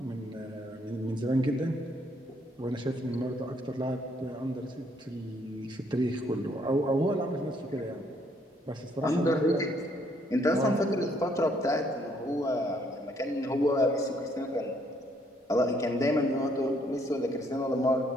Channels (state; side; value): normal; both; correlation 0.68